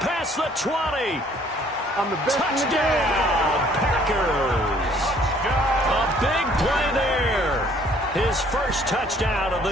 the 20. Touchdown, Packers. A big play there. His first touchdown of the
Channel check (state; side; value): normal; both; correlation 0.60